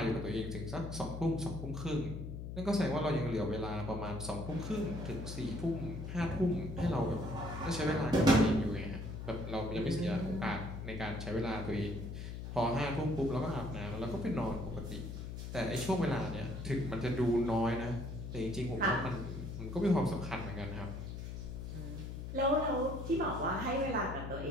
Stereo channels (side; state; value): left; noise; hum, 7 dB below the sound